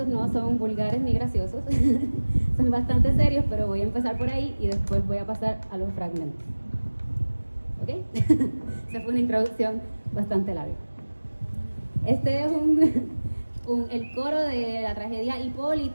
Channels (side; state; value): both; inverted; correlation -1.00